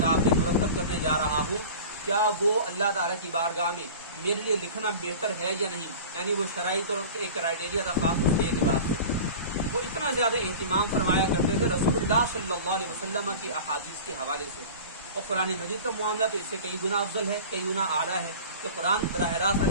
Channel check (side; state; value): both; inverted; correlation -0.36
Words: میں مرتب کرنے جا رہا ہوں، کیا وہ اللہ تعالیٰ کی بارگاہ میں میرے لیے لکھنا بہتر ہے یا نہیں، یعنی وہ شرائط اور ایک کرائیٹیریا تھا خاص اس کے اعتبار سے۔ وہ اتنا زیادہ اہتمام فرمایا کرتے تھے رسول اللہ صلی اللہ علیہ وسلم کی احادیث کے حوالے سے، اور قرآن مجید کا معاملہ تو اس سے کئی گنا افضل ہے، کئی گنا اعلیٰ ہے کہ قرآن براہ راست